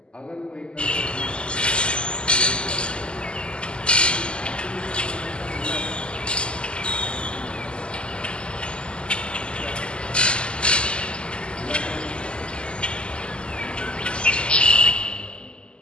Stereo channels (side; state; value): right; late; 0.051 ms